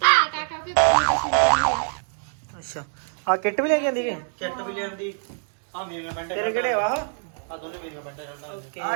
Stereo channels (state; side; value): silent; left; 62 dB below the other